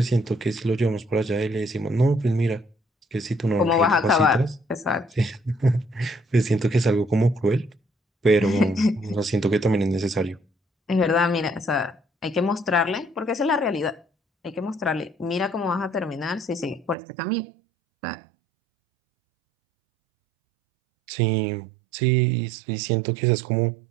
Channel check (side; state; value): left; drops out; at 16.9 s